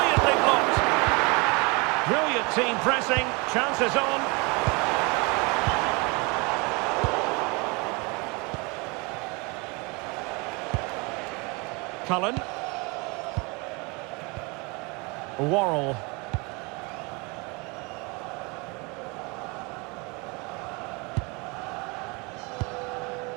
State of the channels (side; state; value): left; quieter; 28.7 dB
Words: blocked. Brilliant team pressing. Chances on. Cullen. Worrell.